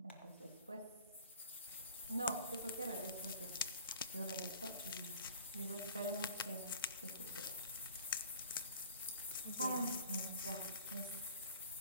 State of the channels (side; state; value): both; inverted; correlation -0.46